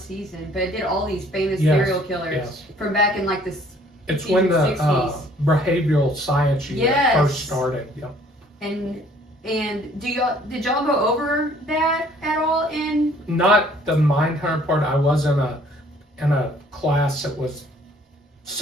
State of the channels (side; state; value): both; normal; correlation 0.58